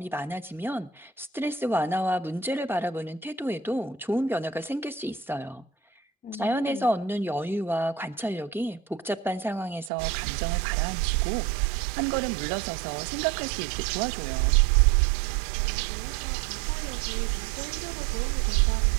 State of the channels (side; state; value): left; drops out; at 9.9 s